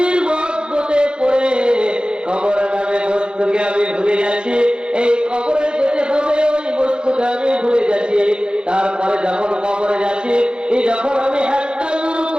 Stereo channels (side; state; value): left; late; 0.049 ms